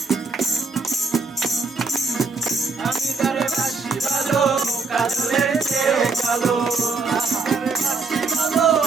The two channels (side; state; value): left; quieter; 4.2 dB